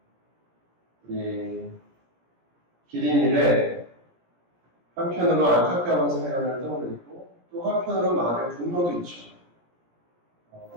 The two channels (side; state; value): left; late; 17 ms